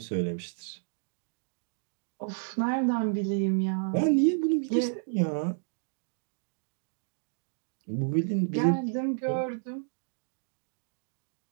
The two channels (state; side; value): silent; left; digital silence